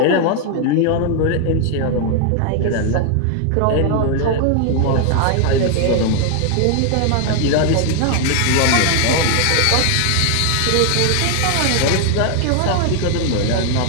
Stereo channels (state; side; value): different; both; correlation 0.00